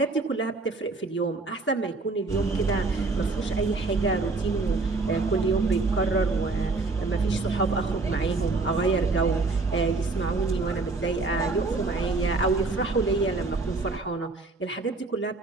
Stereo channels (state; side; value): quieter; left; 3.6 dB